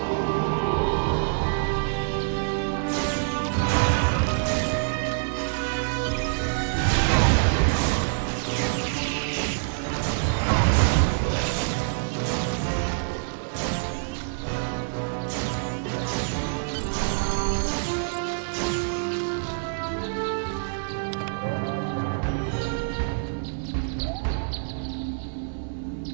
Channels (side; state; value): left; silent; digital silence